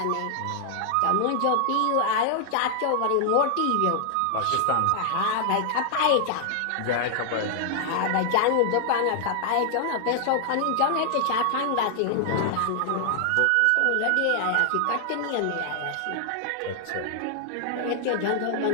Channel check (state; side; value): different; both; correlation 0.00